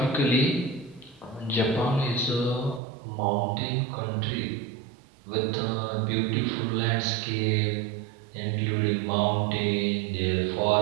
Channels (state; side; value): drops out; left; at 2.8 s